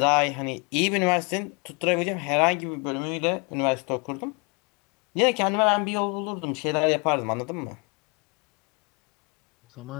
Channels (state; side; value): quieter; right; 32.4 dB